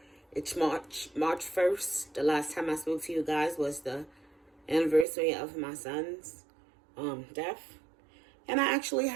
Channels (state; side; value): drops out; left; at 5.1 s